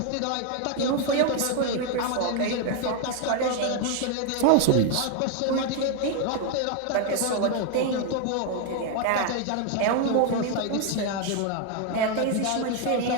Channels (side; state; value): both; different; correlation 0.01